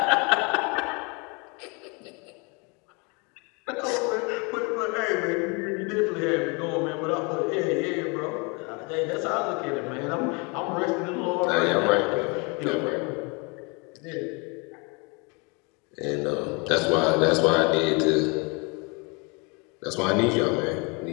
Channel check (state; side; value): quieter; right; 30.9 dB